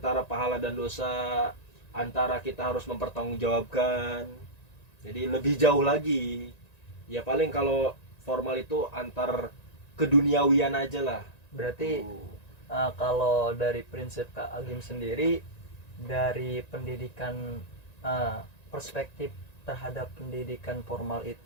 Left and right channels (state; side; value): late; right; 1.9 ms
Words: pahala dan dosa, antara kita harus mempertanggungjawabkan, jadi lebih jauh lagi. Ya paling kalau formal itu antar keduniawian aja lah. Berarti kalau dari prinsip Kak Agim sendiri, dari pendidikan perspektif terhadap pendidikan formal